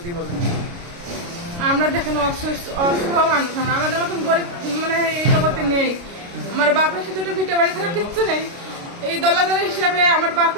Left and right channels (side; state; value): left; late; 29 ms